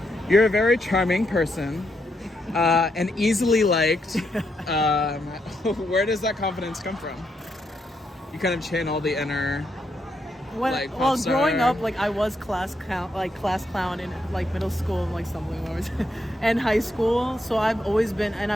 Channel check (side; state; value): both; normal; correlation 0.79